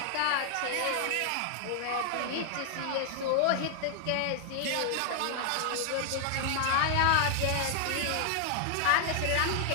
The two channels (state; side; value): different; both; correlation 0.00